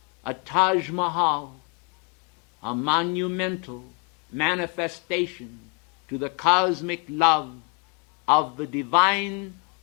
a Taj Mahal, a monumental manifestation to the cosmic love of the divine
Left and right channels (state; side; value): quieter; right; 34.7 dB